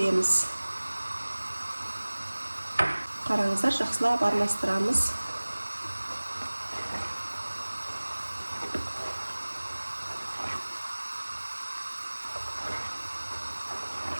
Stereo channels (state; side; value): inverted; both; correlation -1.00